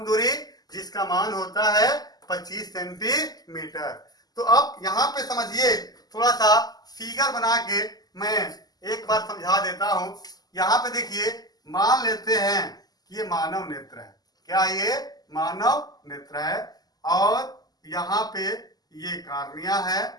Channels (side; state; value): right; late; 0.19 ms